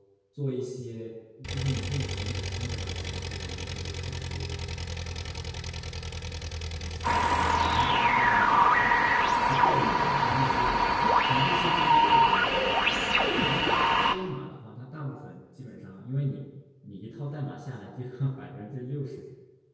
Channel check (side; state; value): both; identical; correlation 1.00